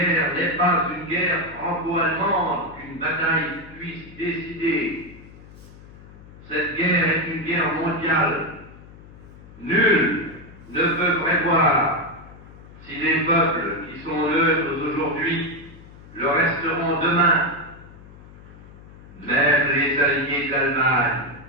n'est pas une guerre franco-allemande qu'une bataille puisse décider. Cette guerre est une guerre mondiale. Nul ne peut prévoir si les peuples qui sont neutres aujourd'hui le resteront demain. Même les alliés de l'Allemagne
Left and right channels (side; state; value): left; noise; hum, 20 dB below the sound